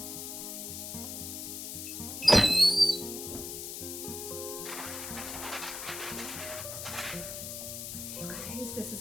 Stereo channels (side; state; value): left; noise; hiss, 6 dB below the sound